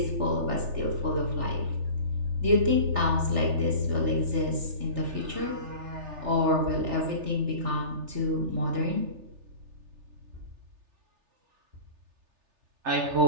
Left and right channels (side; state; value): left; late; 3.3 ms